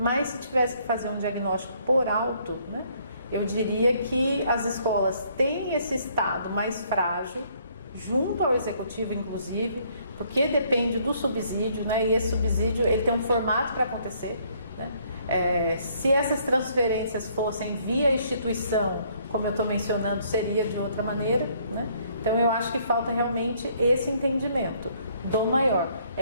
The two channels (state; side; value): inverted; both; correlation -0.65